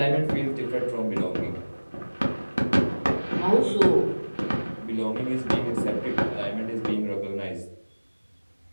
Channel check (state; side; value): inverted; both; correlation -1.00